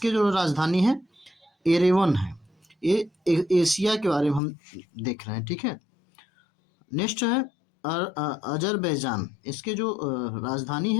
जो राजधानी है एरेवन है। ये एशिया के बारे में हम देख रहे हैं। ठीक है, नेक्स्ट है अजरबैजान, इसके जो राजधानी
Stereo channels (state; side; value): drops out; right; at 4.4 s